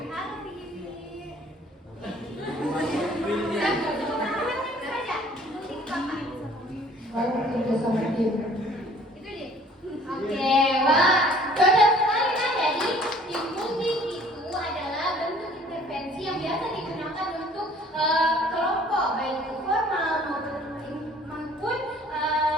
Baru kerja sama tim. Itu dia. Oke, wah, cocok sekali kan. Jadi team building itu adalah bentuk intervensi yang biasa digunakan untuk kelompok, baik itu formal maupun non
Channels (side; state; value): both; normal; correlation 0.54